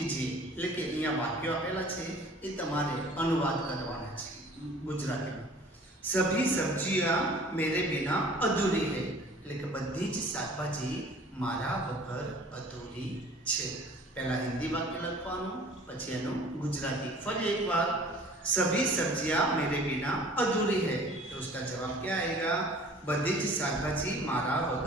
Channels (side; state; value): both; normal; correlation 0.49